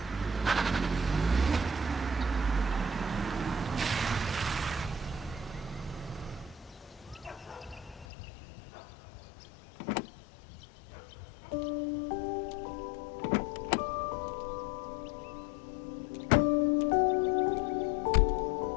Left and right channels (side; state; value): right; drops out; at 8.1 s